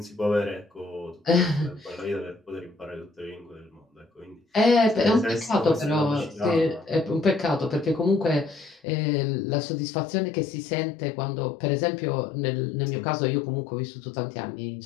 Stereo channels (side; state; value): right; drops out; at 8.8 s